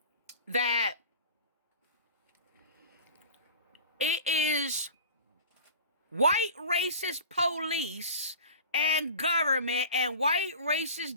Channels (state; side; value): inverted; both; correlation -0.37